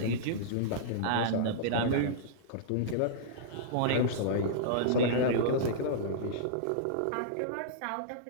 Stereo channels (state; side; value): different; both; correlation -0.03